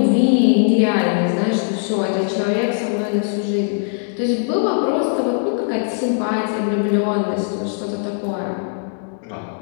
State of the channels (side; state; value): right; silent; 66 dB below the other